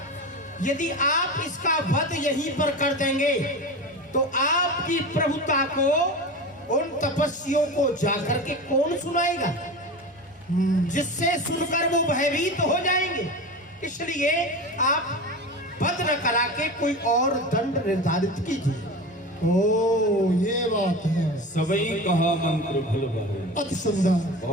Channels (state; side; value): normal; both; correlation 0.28